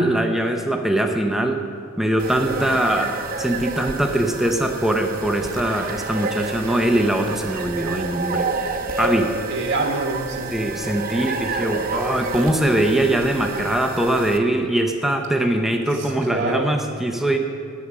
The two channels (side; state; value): both; normal; correlation 0.66